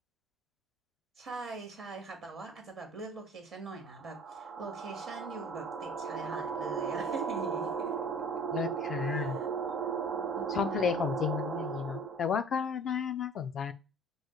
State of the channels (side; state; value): both; normal; correlation 0.48